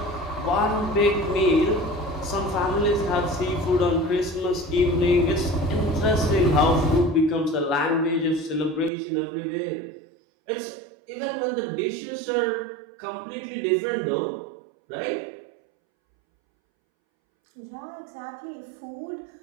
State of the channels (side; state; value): left; drops out; at 8.9 s